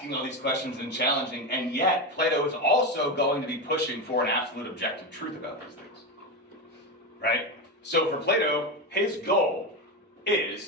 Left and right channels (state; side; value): normal; both; correlation 0.16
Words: all these questions and challenging, and yet Plato is also going to be pushing for an absolute objective truth about these things, right? So for Plato, his goal